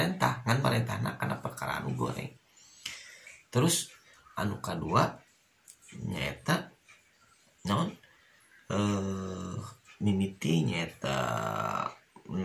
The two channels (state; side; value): identical; both; correlation 1.00